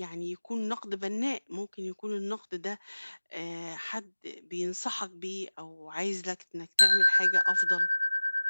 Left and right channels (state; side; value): inverted; both; correlation -1.00